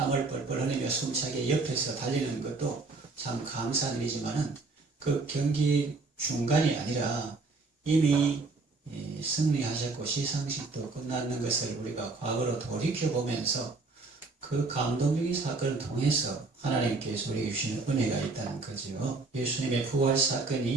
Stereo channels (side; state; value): left; quieter; 3.8 dB